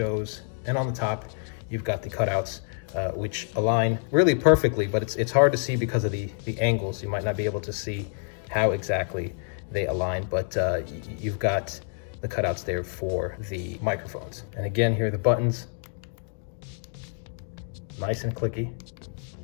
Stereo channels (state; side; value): silent; right; 55 dB below the other